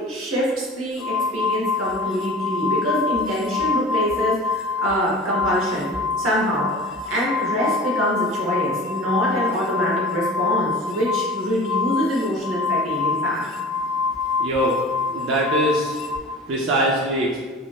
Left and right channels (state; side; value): normal; both; correlation 0.39